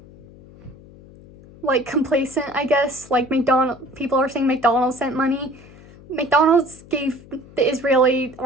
complacent, I guess. Like people are saying McDonald's sent money. McDonald's gave the Israeli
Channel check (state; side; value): noise; left; hum, 21 dB below the sound